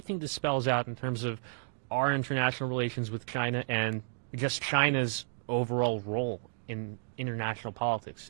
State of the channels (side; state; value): left; silent; digital silence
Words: think this spells out in terms of our international relations with China and just China's overall role in international politics?